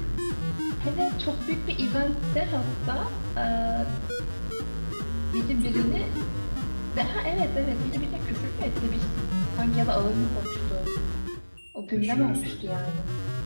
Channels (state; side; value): inverted; both; correlation -1.00